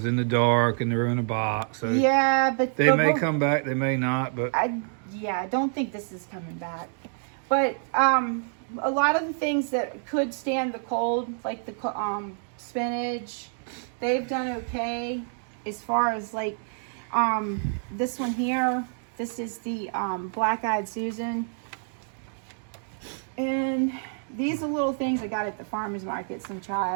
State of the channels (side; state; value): left; silent; 60 dB below the other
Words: in the dark, and they were in a box. So yeah, but they may come back, they may not, but I don't think this is coming back. But a lot of the things that could stand the cold, like the spinach, they've done okay. As far as like this one here, this is the black-eyed Susan, and these are little things I got at the farmer's market, some